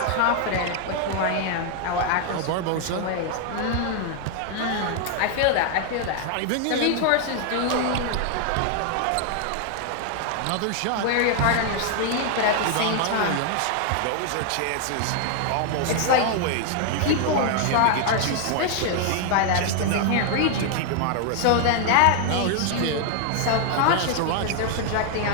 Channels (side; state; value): both; different; correlation 0.00